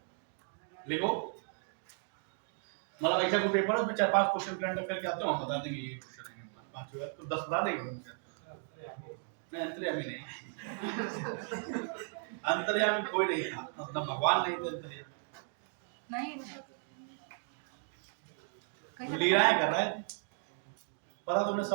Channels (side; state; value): left; silent; 54 dB below the other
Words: लिखो मतलब ऐसा कोई पेपर है उसमें 4-5 क्वेश्चन करंट अफेयर के आते हो, हम बता देंगे ये क्वेश्चन है, 5 होगा तो 10 बता देंगे। नहीं अंतर्यामी नहीं, अंतर्यामी कोई नहीं था, मतलब भगवान नहीं थे अंतर्यामी, नहीं लीलाएं कर रहे थे, पता तुम्हें